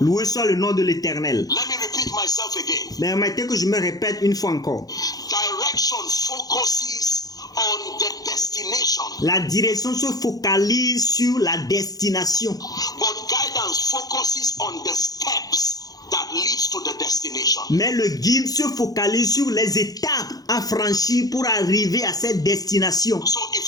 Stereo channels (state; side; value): late; right; 0.18 ms